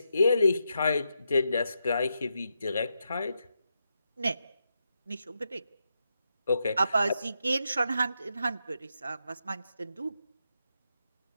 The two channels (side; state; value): both; inverted; correlation -0.84